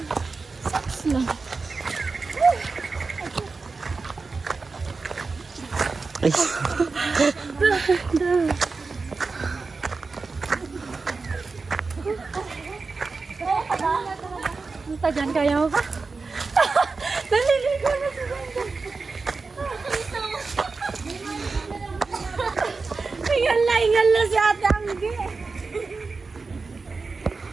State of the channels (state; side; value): quieter; left; 4.2 dB